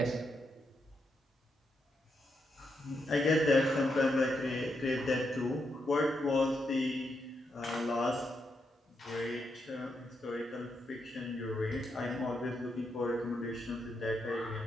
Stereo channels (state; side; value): normal; both; correlation 0.82